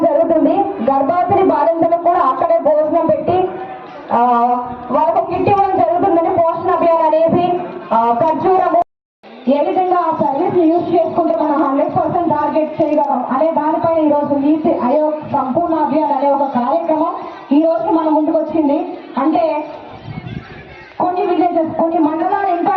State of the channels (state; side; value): identical; both; correlation 1.00